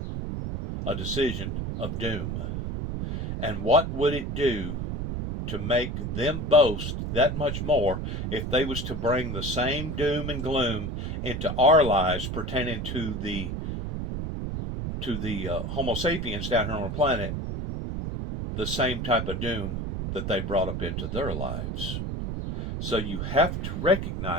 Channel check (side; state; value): right; noise; rumble, 3 dB below the sound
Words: a decision of doom. And what would it do to make them boast that much more if they was to bring the same doom and gloom into our lives pertaining to the Homo sapiens down here on the planet, the same type of doom that they brought up into their lives? So you have to